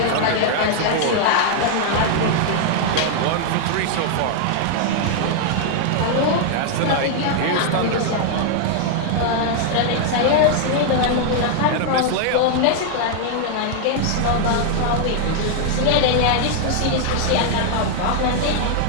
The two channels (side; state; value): both; different; correlation 0.00